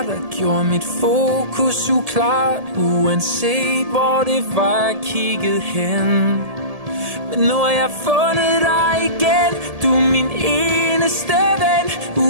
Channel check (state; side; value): late; left; 1.7 ms